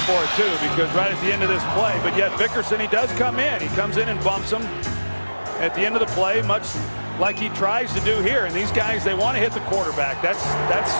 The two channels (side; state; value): both; inverted; correlation -1.00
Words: for it too, because right at the end of this play, but yet Vickerson, he does come in. He comes in and bumps him at the end of the play, much like he tries to do here. And these guys, they want to hit the quarterback. That's